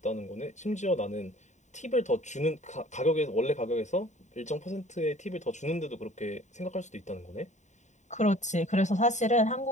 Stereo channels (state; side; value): late; right; 0.34 ms